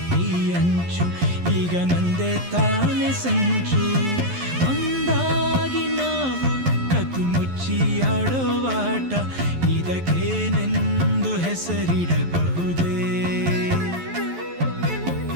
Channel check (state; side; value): late; left; 11 ms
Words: ಅಂಚು ಈಗ ನಂದೇ ತಾನೆ ಸಂಚು. ಒಂದಾಗಿ ನಾವು ಕತ್ತು ಮುಚ್ಚಿ ಆಡೋ ಆಟ, ಇದಕ್ಕೇನೆಂದು ಹೆಸರಿಡಬಹುದೇ?